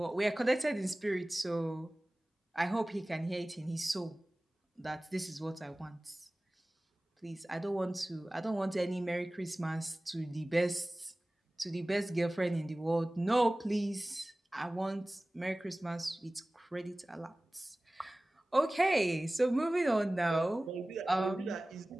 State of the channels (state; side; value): normal; both; correlation 0.98